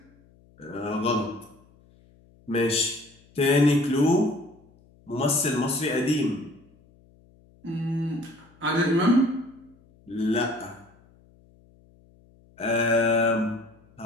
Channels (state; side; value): noise; left; hum, 29 dB below the sound